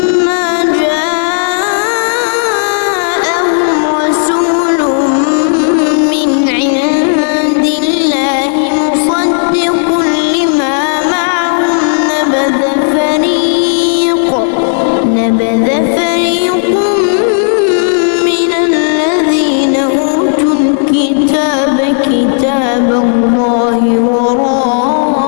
كتاب الله وراء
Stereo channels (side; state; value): right; silent; digital silence